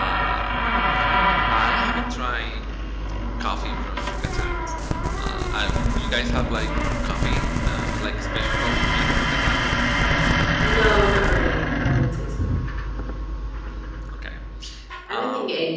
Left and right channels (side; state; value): both; identical; correlation 1.00